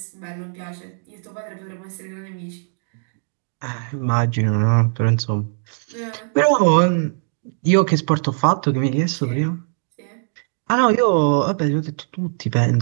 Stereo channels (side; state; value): left; silent; digital silence